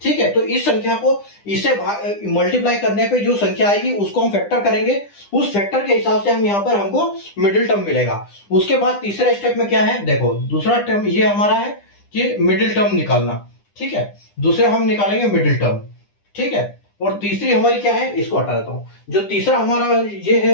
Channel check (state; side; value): late; right; 9.9 ms